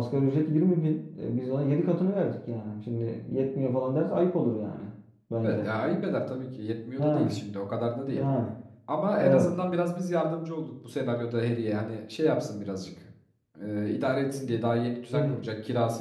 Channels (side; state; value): both; identical; correlation 1.00